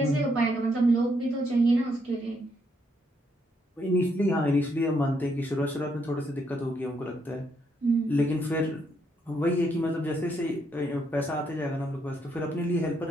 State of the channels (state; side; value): normal; both; correlation 0.75